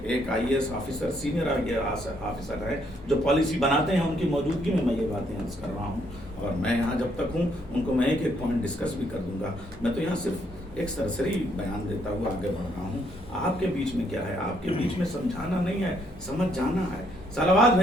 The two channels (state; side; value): normal; both; correlation 0.71